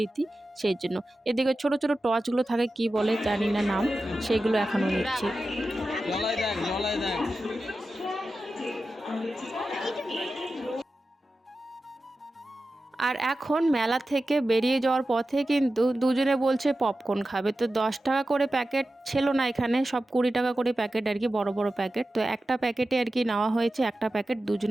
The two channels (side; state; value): both; normal; correlation 0.93